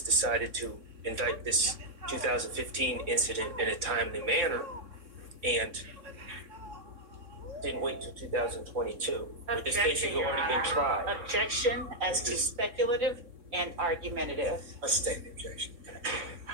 to indict this 2015 incident in a timely manner and didn't wait till 2022? Would this case have already been tried? Objection as to speculative and argumentative. Let's state the objection.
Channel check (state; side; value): late; left; 3.6 ms